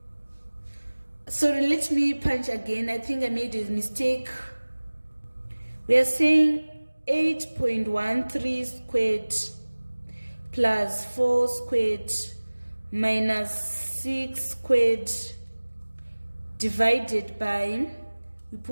Sorry, let me punch again. I think I made a mistake. We are saying 8.13 squared plus 4 squared minus 6 squared divided by, we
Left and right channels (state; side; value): inverted; both; correlation -1.00